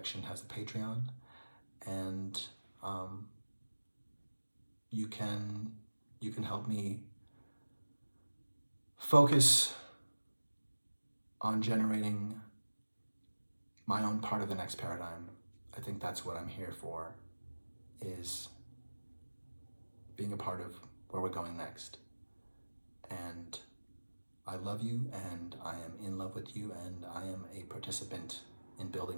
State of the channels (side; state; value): both; inverted; correlation -1.00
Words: has a Patreon, and you can help me focus on generating my own part of the next paradigm. I think that's what I'm here for, is being a part of where we're going next. And I love you, and I am in love with you, and I am a participant in building